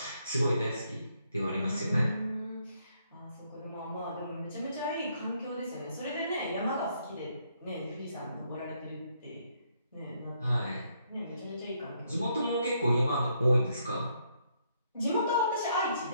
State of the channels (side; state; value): both; inverted; correlation -0.72